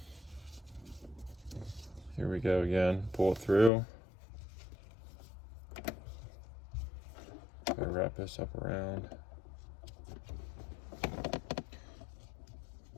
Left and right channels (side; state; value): right; drops out; at 3.7 s